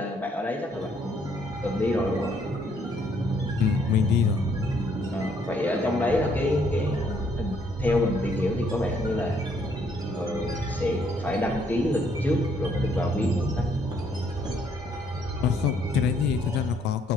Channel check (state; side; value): normal; both; correlation 0.68